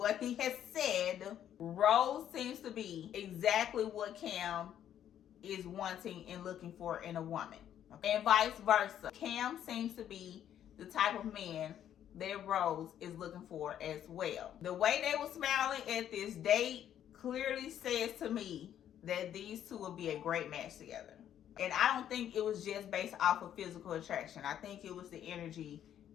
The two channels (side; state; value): right; quieter; 10.3 dB